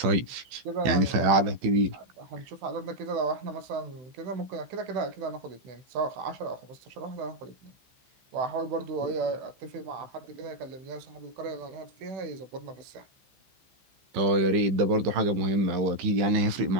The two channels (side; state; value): left; late; 15 ms